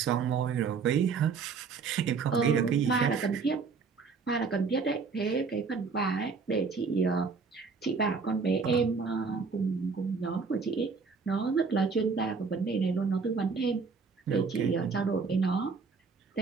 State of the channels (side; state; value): left; quieter; 5.0 dB